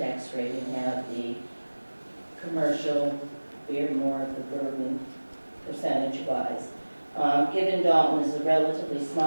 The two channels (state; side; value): inverted; both; correlation -1.00